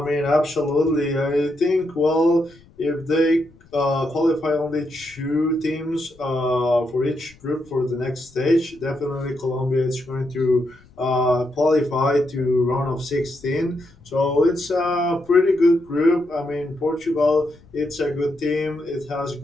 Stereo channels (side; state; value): left; noise; rumble, 27 dB below the sound